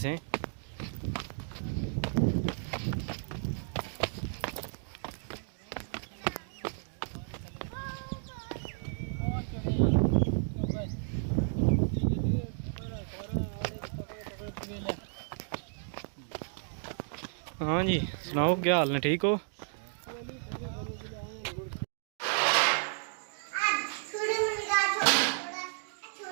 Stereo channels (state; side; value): silent; left; digital silence